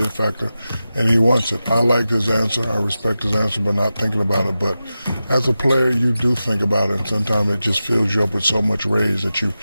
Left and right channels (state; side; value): inverted; both; correlation -0.93